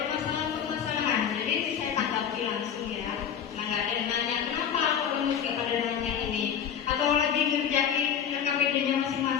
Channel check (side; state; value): right; quieter; 8.4 dB